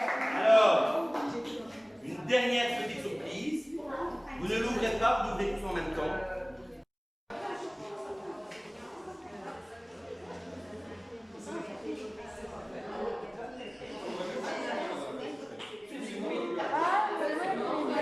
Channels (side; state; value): both; identical; correlation 1.00